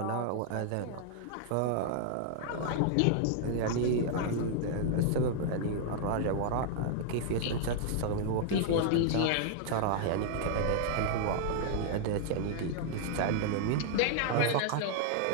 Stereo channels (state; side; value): different; both; correlation -0.01